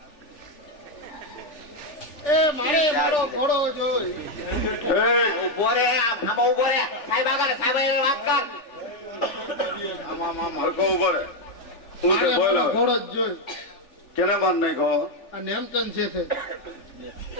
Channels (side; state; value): right; late; 3.4 ms